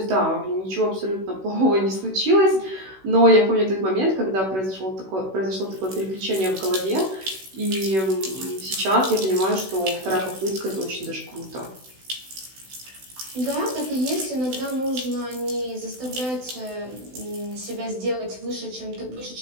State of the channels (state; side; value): late; left; 16 ms